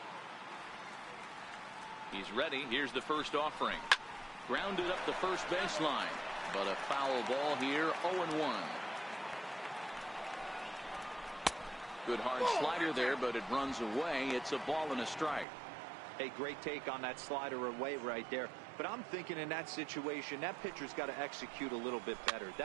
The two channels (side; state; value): left; drops out; at 15.5 s